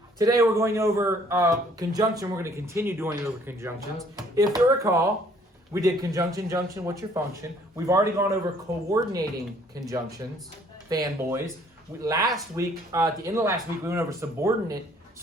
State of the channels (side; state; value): both; normal; correlation 0.60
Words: Today we're going over conjunction. We're going to continue doing over conjunctions. If you recall, we did conjunction, junction, what's your function? We've already gone over coordinating conjunctions, fanboys. Last week, at the end of last week, we went over